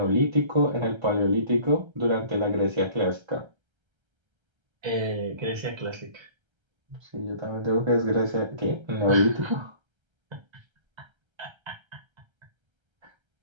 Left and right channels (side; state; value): left; late; 1.3 ms